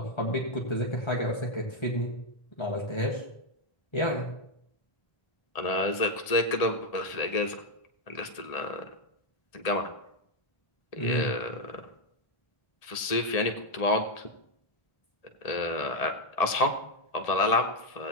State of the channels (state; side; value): late; right; 1.7 ms